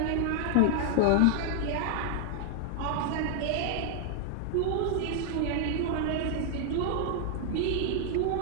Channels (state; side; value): different; both; correlation 0.00